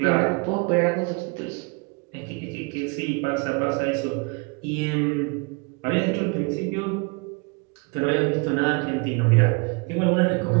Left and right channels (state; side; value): quieter; left; 31.1 dB